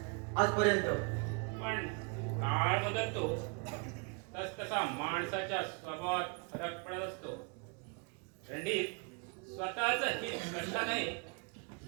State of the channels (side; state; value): left; quieter; 34.4 dB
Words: आजपर्यंत. पण काळ बदलतो तस तसा माणसाच्या स्वभावात फरक पडत असतो. रणधीर स्वतःच हित कशा नाही